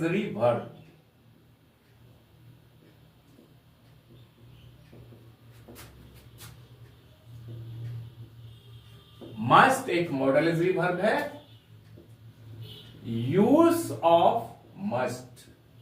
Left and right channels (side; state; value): both; identical; correlation 1.00